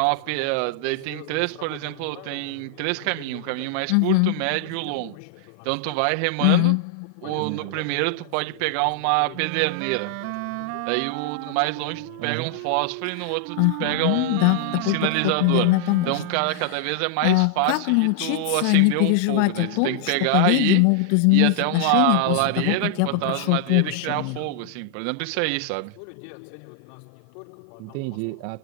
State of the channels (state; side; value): different; both; correlation 0.00